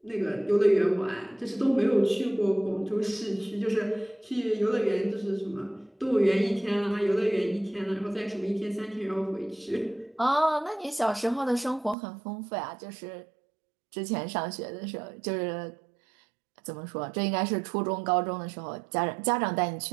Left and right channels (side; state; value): left; drops out; at 12.0 s